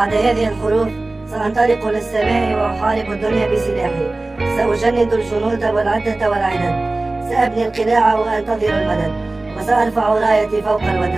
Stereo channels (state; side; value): quieter; left; 3.0 dB